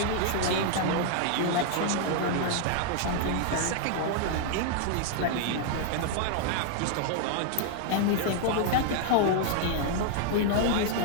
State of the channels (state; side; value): different; both; correlation 0.00